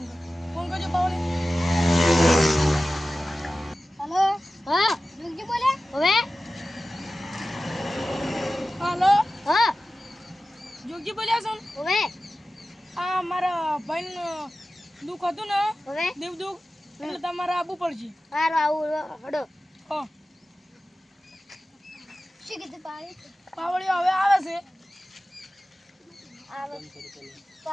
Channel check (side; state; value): both; normal; correlation 0.95